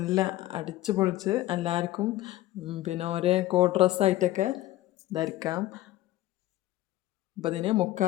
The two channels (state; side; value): quieter; right; 15.9 dB